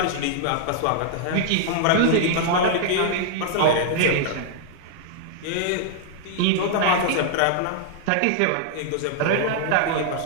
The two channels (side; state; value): both; different; correlation -0.01